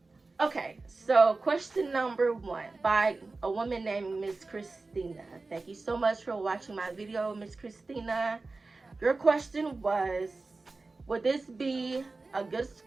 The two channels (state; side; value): quieter; left; 3.6 dB